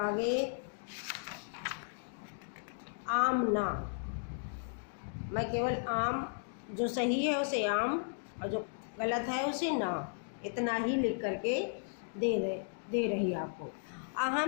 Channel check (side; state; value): right; silent; digital silence